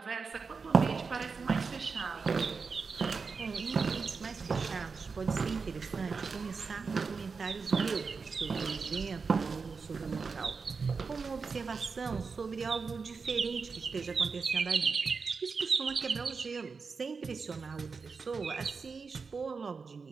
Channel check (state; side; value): quieter; left; 4.9 dB